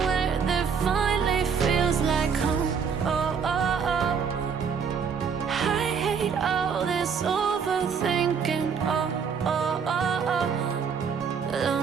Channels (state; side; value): quieter; left; 6.4 dB